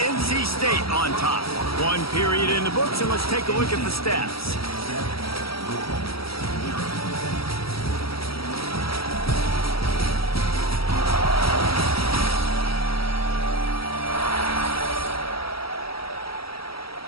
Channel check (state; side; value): late; right; 0.75 ms